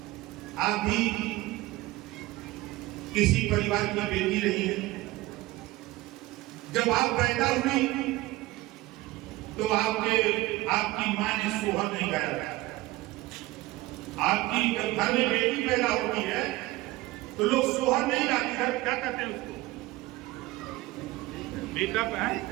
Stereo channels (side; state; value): left; quieter; 18.5 dB